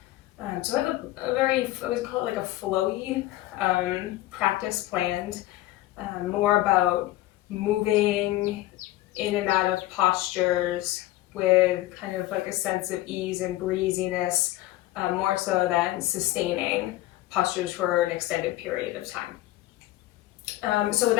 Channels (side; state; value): right; quieter; 16.4 dB